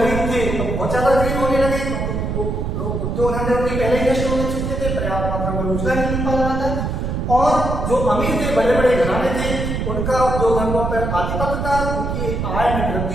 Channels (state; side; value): noise; right; rumble, 2 dB below the sound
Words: थे तो बहुत ज्यादा गरीब होने लगे, क्योंकि वो लोग उद्योग धंधे उनके पहले ही नष्ट होने चुके थे, पर्याप्त मात्रा में रोजगार नहीं मिल पा रहा था। और जो अमीर थे, बड़े बड़े घराने थे, उनका उद्योग धंधों पर आधिपत्य था, उनकी आय में वृद्धि